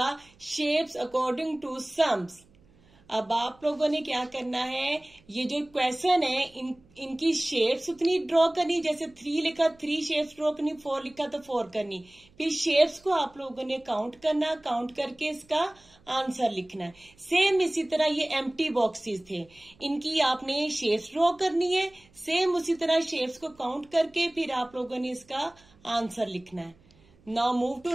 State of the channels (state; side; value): noise; right; hum, 30 dB below the sound